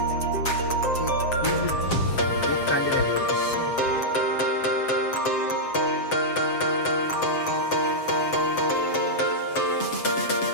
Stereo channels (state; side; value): late; right; 7.6 ms